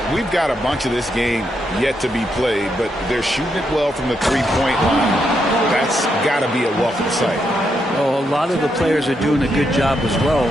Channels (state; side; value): normal; both; correlation 0.80